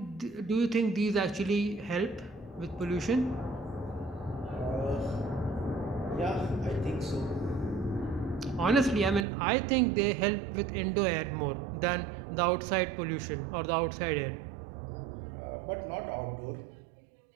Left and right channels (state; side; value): drops out; left; at 9.2 s